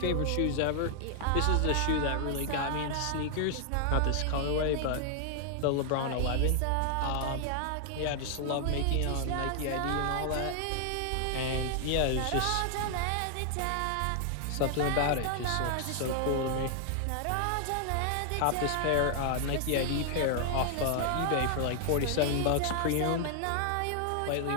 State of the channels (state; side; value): different; both; correlation 0.00